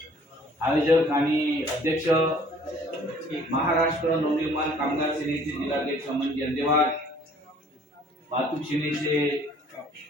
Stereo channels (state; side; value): normal; both; correlation 0.55